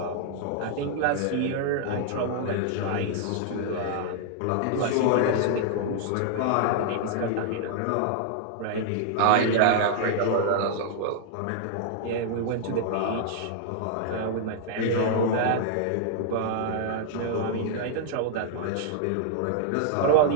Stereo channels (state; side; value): different; both; correlation -0.01